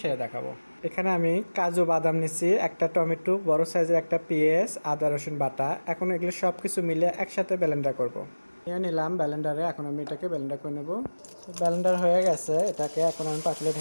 সেটা দেখাবো। এখানে আমি কাজু বাদাম নিচ্ছি, একটা টমেটো, বড় সাইজের একটা পেঁয়াজ, আদা রসুন বাটা। এখন এগুলো সব কিছু মিলে একসাথে ব্লেন্ডার করব। নিয়ে নিলাম ব্লেন্ডারে, এখন আমি এটাকে ব্লেন্ডার করে নেব। ব্লেন্ডার হয়ে গেছে, এটাকে এখন আমি পাতিলে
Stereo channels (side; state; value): both; inverted; correlation -1.00